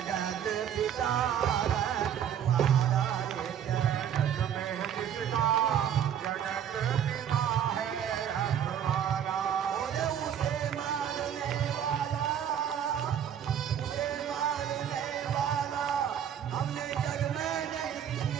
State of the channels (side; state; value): left; quieter; 9.2 dB